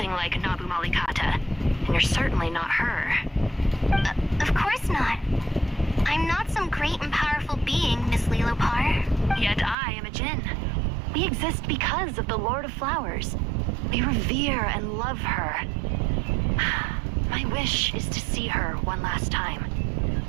like Nabu Malikata, and you're certainly not her. Of course not. I'm not some great and powerful being, Miss Lilopar. Yet I am a djinn. We exist because of the Lord of Flowers. We revere and love her. My wish is to see her one last time.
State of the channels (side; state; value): left; drops out; at 9.8 s